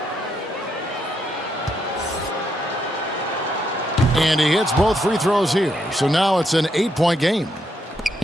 And he hits both free throws here. So now it's an 8-point game.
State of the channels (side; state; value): both; normal; correlation 0.78